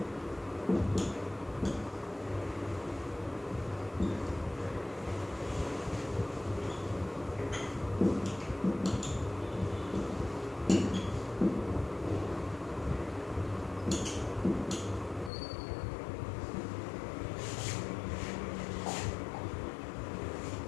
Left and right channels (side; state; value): right; drops out; at 15.3 s